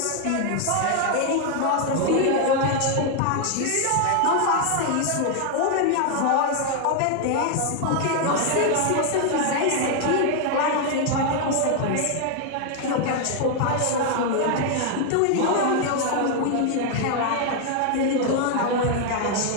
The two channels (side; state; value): both; different; correlation 0.00